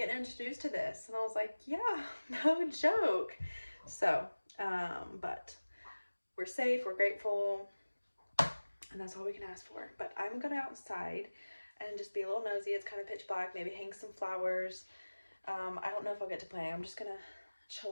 introduced to this. And I was like, yeah, no joke. So but we're safe, we're grateful, and that's all we can ask for. But I'm gonna outside and just be a little nosy. It's kind of pitch black, maybe hang some flowers. I don't know if I'll get to play. I'm just gonna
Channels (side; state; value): both; inverted; correlation -1.00